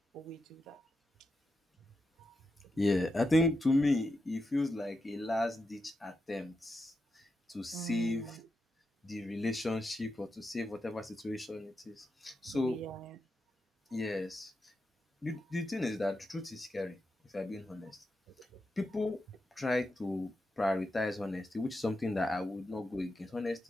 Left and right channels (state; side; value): normal; both; correlation 0.87